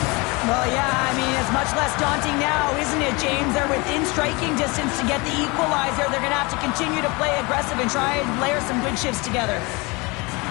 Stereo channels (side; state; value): right; quieter; 26.5 dB